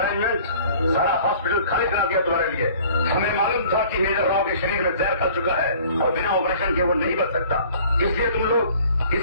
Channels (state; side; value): inverted; both; correlation -0.51